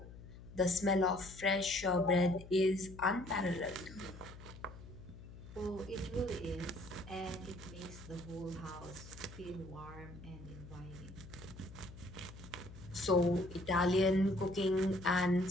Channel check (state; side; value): noise; left; hum, 15 dB below the sound